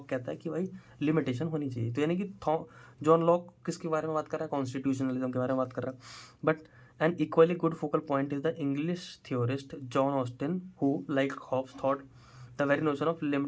कहता है कि भाई लिमिटेशन होनी चाहिए। तो यानी कि जॉन लॉक किसके बारे में बात कर रहा है, कॉन्स्टिट्यूशनलिज्म के बारे में बात कर रहा है। But an equally good focal point is the English theorist John Austin who like Hobbes thought the very notion of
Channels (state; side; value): identical; both; correlation 1.00